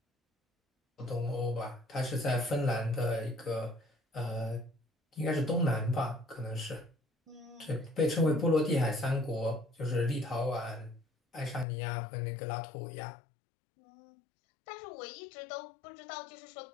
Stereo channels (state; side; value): drops out; right; at 11.7 s